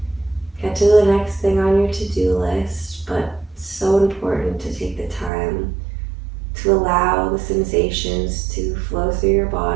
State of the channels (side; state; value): left; drops out; at 5.3 s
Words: get to the next thing on your to-do list, but so important to take the time to allow the sensations to flow through your